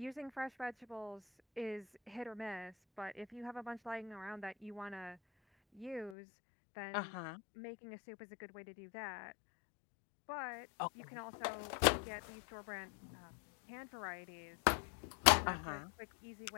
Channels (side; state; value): right; drops out; at 6.2 s